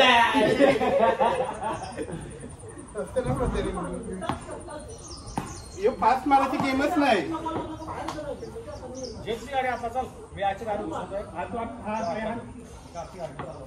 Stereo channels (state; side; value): identical; both; correlation 1.00